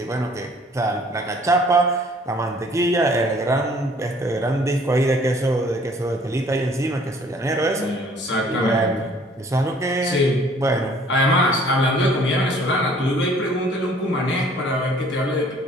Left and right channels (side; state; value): both; normal; correlation 0.56